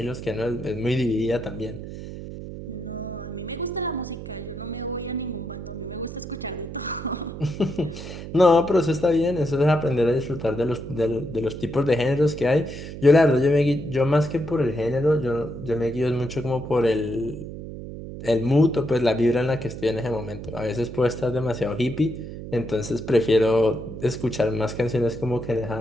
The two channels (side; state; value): right; noise; hum, 10 dB below the sound